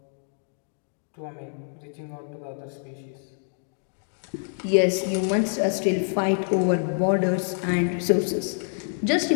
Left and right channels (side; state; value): right; silent; 61 dB below the other